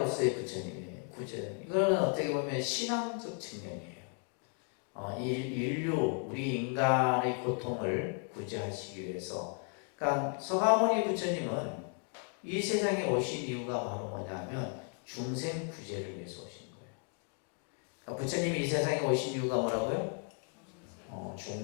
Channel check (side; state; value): right; quieter; 39.2 dB